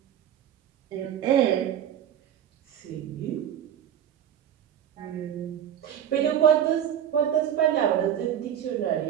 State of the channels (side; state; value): left; quieter; 9.9 dB